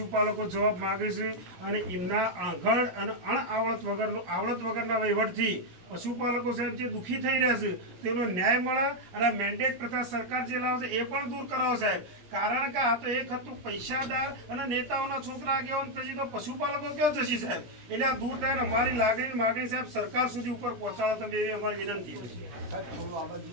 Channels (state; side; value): late; left; 17 ms